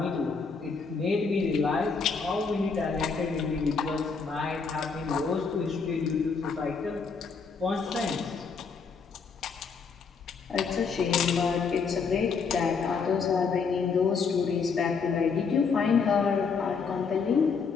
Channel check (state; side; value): quieter; right; 5.3 dB